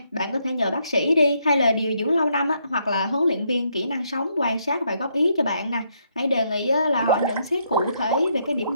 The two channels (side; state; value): both; inverted; correlation -0.75